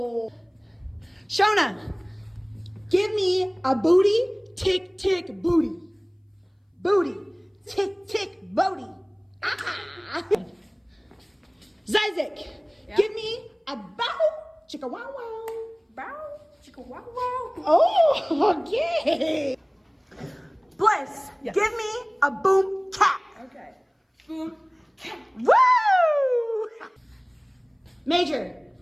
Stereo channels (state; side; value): identical; both; correlation 1.00